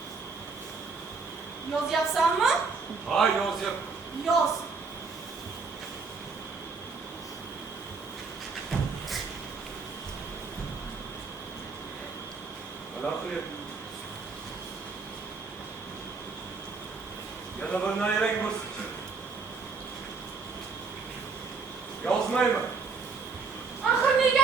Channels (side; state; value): left; quieter; 4.6 dB